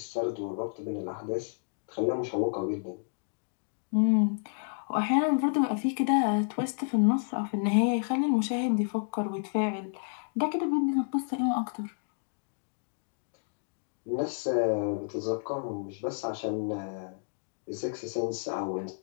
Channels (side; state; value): right; silent; digital silence